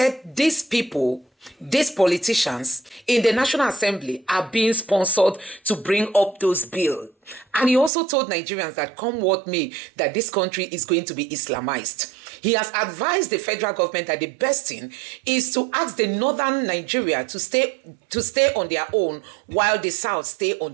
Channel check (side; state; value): left; drops out; at 7.9 s